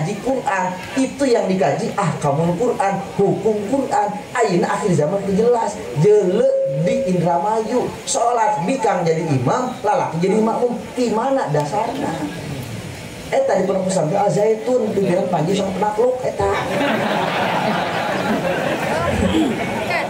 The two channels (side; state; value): both; identical; correlation 1.00